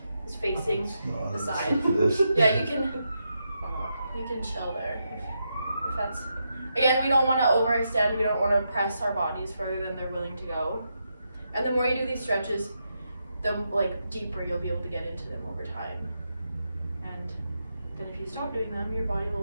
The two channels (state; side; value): inverted; both; correlation -0.84